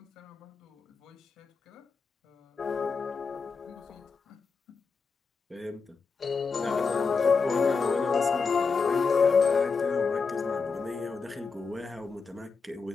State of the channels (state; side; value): quieter; right; 4.9 dB